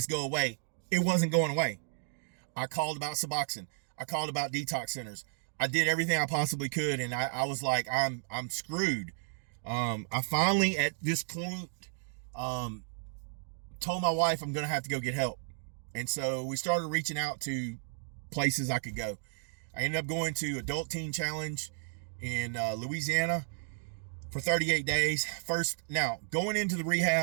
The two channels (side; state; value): left; silent; digital silence